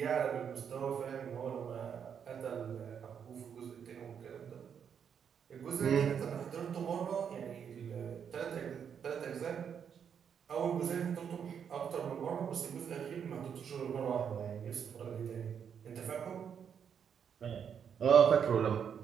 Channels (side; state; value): left; quieter; 7.7 dB